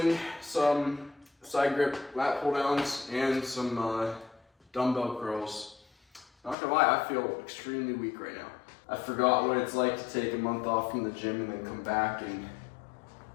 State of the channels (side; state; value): right; drops out; at 6.6 s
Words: some side grip lat pull downs and some dumbbell curls. Not gonna lie, I feel extremely weak right now. I forgot what it's like to take a month off from the gym and then come back and